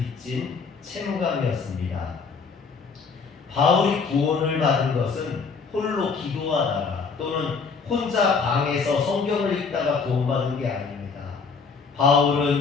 채무감이었습니다. 바울이 구원을 받은 것은 홀로 기도하다가 또는 혼자 방에서 성경을 읽다가 구원받은 게 아닙니다.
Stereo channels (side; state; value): right; quieter; 5.1 dB